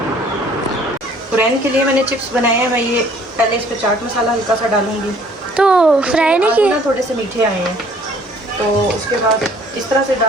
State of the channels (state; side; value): normal; both; correlation 0.57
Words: कुरैन के लिए मैंने चिप्स बनाए हैं। मैं ये पहले इस पर चाट मसाला हल्का सा डालूंगी, तो फ्राई नहीं आलू किए? ना थोड़े से मीठे आए हैं, तो उसके बाद इस तरह से